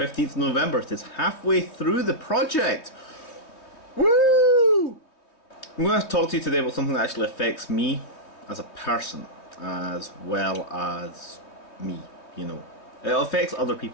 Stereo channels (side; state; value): right; late; 3.1 ms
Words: November. It is halfway through the project. Woo! I'm going to talk to you today about something that actually affects me as a person, as well as me, you know. It affects other